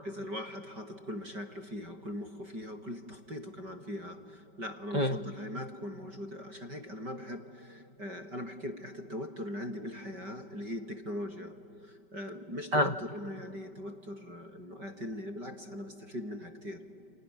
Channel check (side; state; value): left; late; 5.2 ms